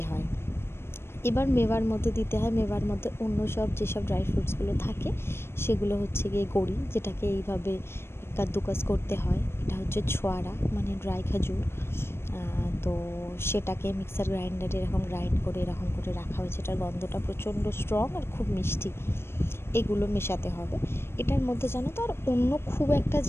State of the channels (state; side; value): late; right; 0.12 ms